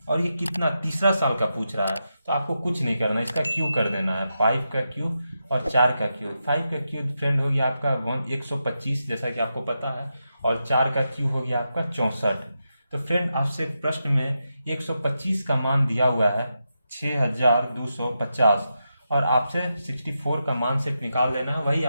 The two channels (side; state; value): both; inverted; correlation -0.87